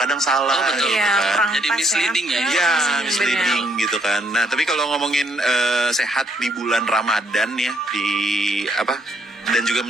salah. Oh betul, gitu ya, kan. Jadi misleading ya. Iya, misleading gitu kan. Nah, tapi kalau ngomongin sehat di bulan Ramadan ya, di apa, dan juga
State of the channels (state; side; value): normal; both; correlation 0.70